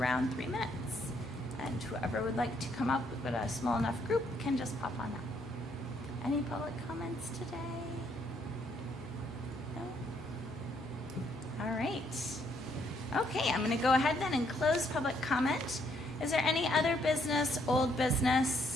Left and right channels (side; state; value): both; normal; correlation 0.71